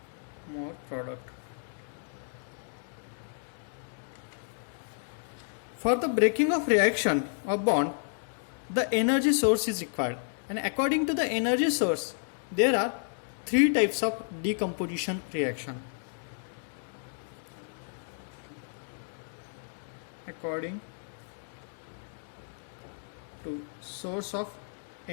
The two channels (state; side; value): silent; right; digital silence